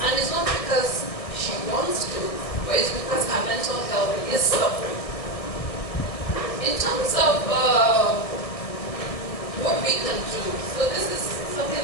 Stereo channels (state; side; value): late; right; 1.6 ms